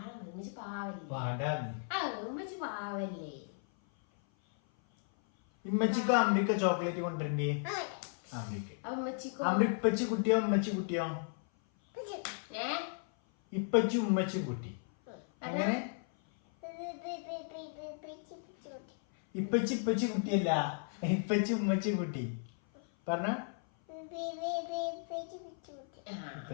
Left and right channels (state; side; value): silent; right; 54 dB below the other